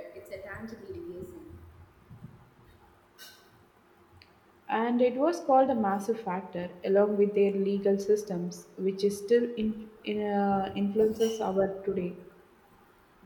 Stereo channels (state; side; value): identical; both; correlation 1.00